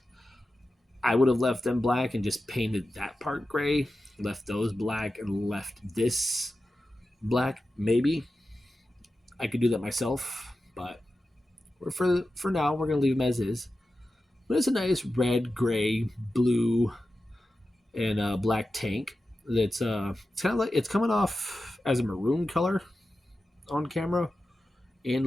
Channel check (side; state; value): both; normal; correlation 0.92